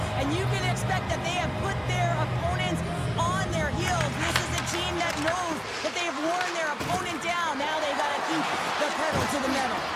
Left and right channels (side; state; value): both; identical; correlation 1.00